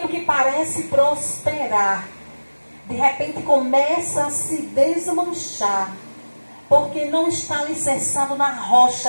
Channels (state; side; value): inverted; both; correlation -1.00